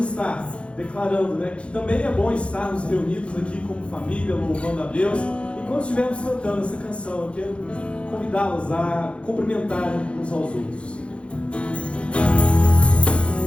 declarando, né, que também é bom estarmos reunidos aqui como família, louvando a Deus. E quando estivermos cantando essa canção, eu quero convidá-los a cumprimentarem uns aos outros.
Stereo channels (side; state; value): right; late; 0.059 ms